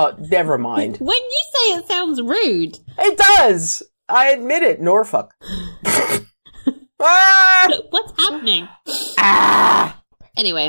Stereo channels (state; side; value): inverted; both; correlation -1.00